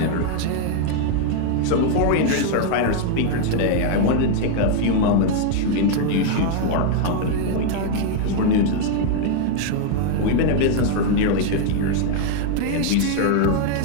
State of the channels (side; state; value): both; different; correlation 0.00